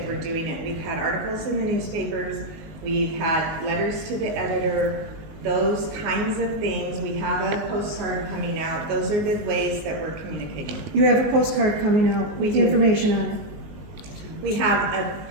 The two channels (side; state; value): left; late; 19 ms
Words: we're doing it. We've had articles in the newspapers, we've had letters to the editor, those kinds of things. We have a postcard coming out. Those are the ways that we're communicating. You have a postcard coming out with the information on it. We have